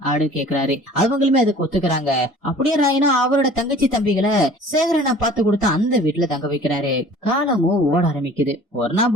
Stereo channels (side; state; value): both; normal; correlation 0.47